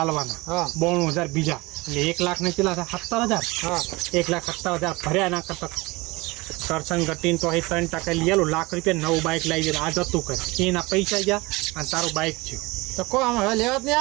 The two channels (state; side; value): quieter; left; 23.2 dB